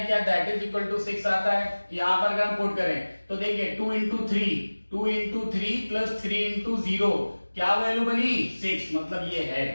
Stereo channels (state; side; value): inverted; both; correlation -1.00